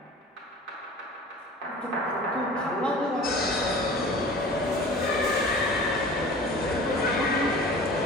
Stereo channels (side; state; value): both; normal; correlation 0.41